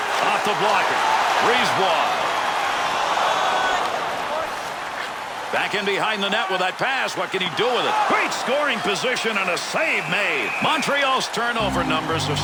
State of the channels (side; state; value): both; identical; correlation 1.00